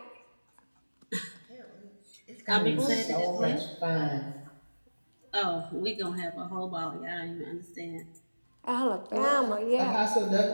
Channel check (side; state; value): both; inverted; correlation -1.00